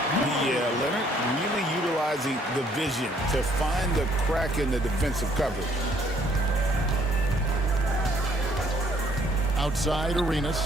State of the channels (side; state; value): both; normal; correlation 0.64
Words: Yeah, Leonard really utilizing the vision to find the crack in the defensive coverage. Outside Arenas.